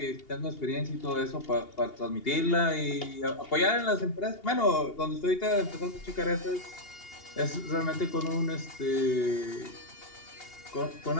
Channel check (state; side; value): late; right; 2.8 ms